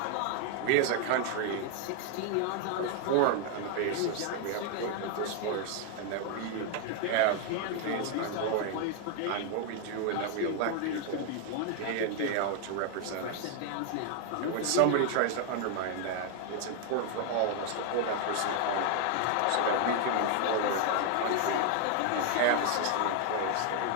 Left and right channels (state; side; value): different; both; correlation 0.00